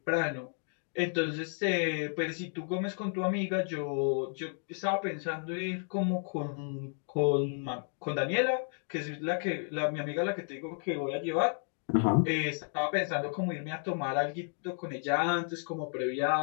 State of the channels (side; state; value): right; silent; 56 dB below the other